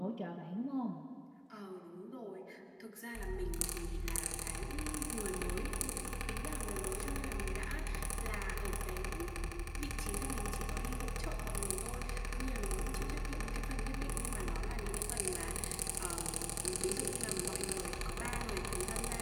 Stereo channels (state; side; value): identical; both; correlation 1.00